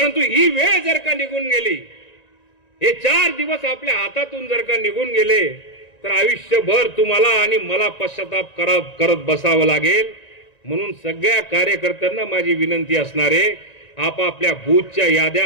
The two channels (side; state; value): right; late; 1.9 ms